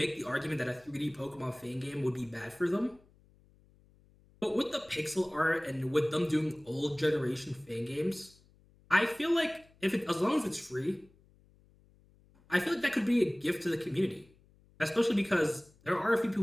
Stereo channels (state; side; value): noise; left; hum, 30 dB below the sound